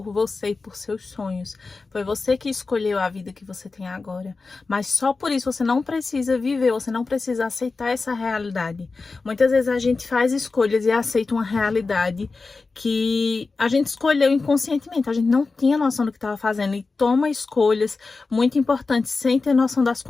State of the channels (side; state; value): right; quieter; 4.0 dB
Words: você e por seus sonhos. Foi você que escolheu a vida que você tem agora. Mas só por isso você não precisa viver, você não precisa aceitar essa realidade. Muitas vezes a gente faz escolhas e aceita uma realidade que a gente escolheu inconscientemente. A gente não tinha noção do que estava fazendo e toma escolhas muito importantes sem ter noção das